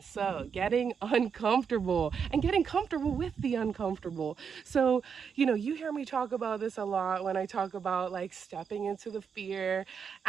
So getting uncomfortable and getting comfortable with the uncomfortable. So, you hear me talk about this a lot when I talk about like stepping into the fear,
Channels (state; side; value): quieter; left; 6.6 dB